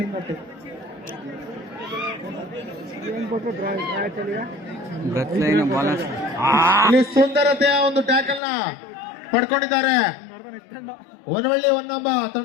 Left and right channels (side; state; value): right; drops out; at 8.4 s